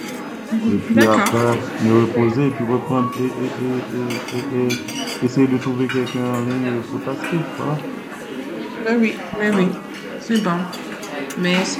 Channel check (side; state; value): both; identical; correlation 1.00